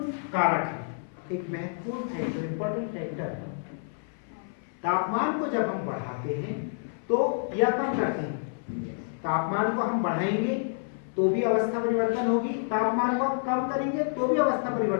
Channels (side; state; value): right; silent; 57 dB below the other